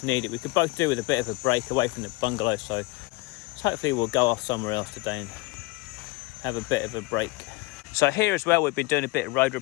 need it. We could both do with a bit of a break away from the bungalow, so hopefully we'll go off somewhere else today and have a bit of a break. So here as well, we've been doing a bit of road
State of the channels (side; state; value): right; quieter; 23.4 dB